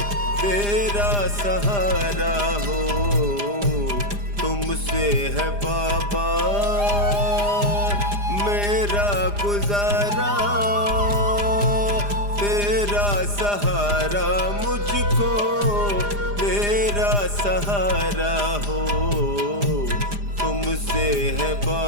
तेरा सहारा हो। तुमसे है बाबा मेरा गुजारा, तेरा सहारा मुझको तेरा सहारा हो। तुमसे है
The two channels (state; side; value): late; left; 4.9 ms